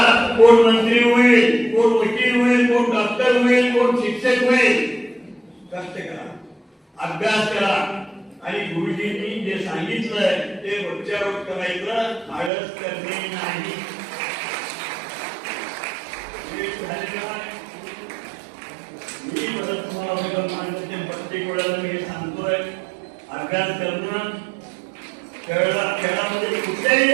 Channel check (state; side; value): drops out; left; at 12.5 s